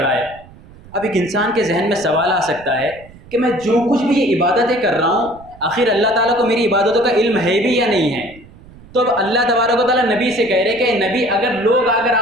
है। अब एक इंसान के जहन में सवाल आ सकता है कि मैं जो कुछ भी ये इबादतें कर रहा हूँ आखिर अल्लाह ताला को मेरी इबादतों का इल्म है भी या नहीं है। तो अब अल्लाह तबारक व तआला नबी से कह रहे कि नबी, अगर लोग आकर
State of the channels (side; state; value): right; noise; rumble, 22 dB below the sound